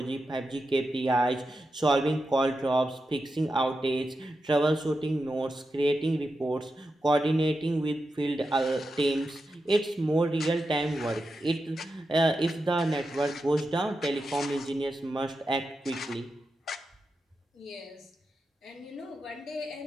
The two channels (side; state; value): both; normal; correlation 0.89